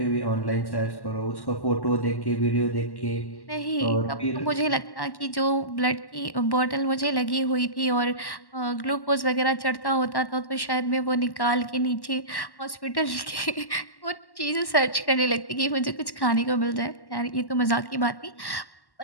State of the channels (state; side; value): late; right; 1.1 ms